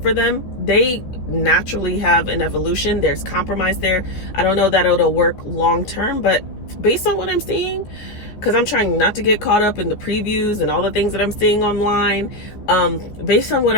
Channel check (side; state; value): right; late; 14 ms